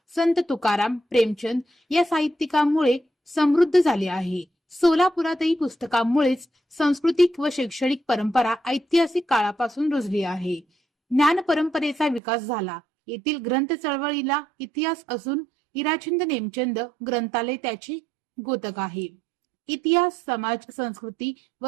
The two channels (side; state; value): left; drops out; at 12.2 s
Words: संत तुकाराम, प्रेमचंद या साहित्यिकांमुळे समृद्ध झाली आहे. सोलापुरातही पुस्तकांमुळेच सांस्कृतिक व शैक्षणिक परंपरा ऐतिहासिक काळापासून रुजली आहे. ज्ञान परंपरेचा विकास झाला. येथील ग्रंथ चळवळीला इतिहास असून इराचंद नेमचंद ग्रंथालय त्याचे द्योतक आहे. इतिहास, समाज, संस्कृती